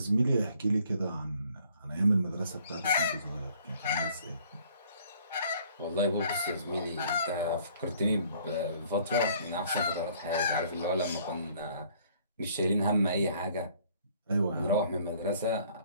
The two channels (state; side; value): inverted; both; correlation -0.59